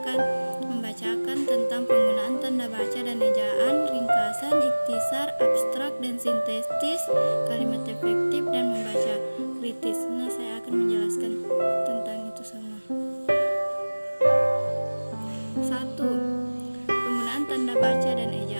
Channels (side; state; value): both; inverted; correlation -1.00